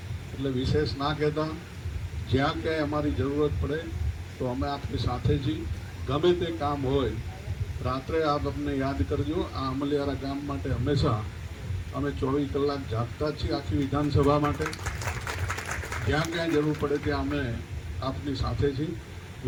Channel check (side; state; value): both; identical; correlation 1.00